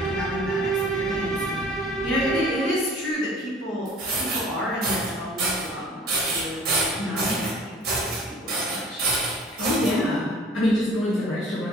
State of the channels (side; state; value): both; normal; correlation 0.49